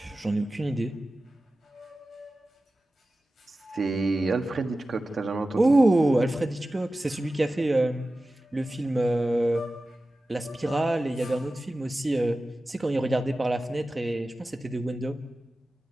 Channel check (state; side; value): normal; both; correlation 0.95